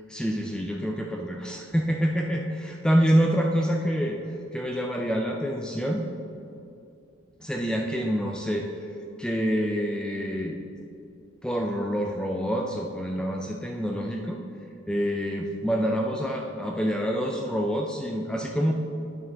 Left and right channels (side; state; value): both; normal; correlation 0.83